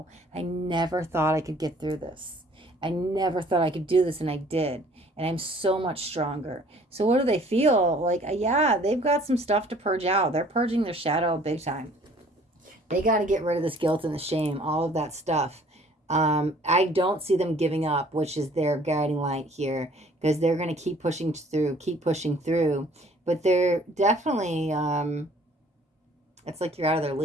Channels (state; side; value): normal; both; correlation 0.55